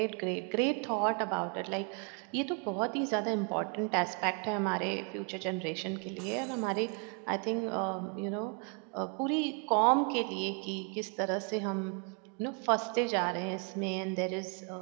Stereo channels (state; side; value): quieter; left; 38.3 dB